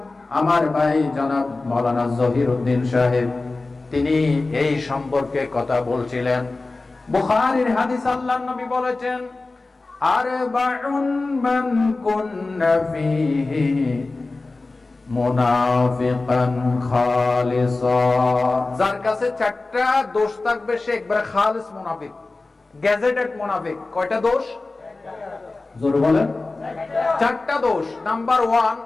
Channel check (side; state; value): right; quieter; 3.4 dB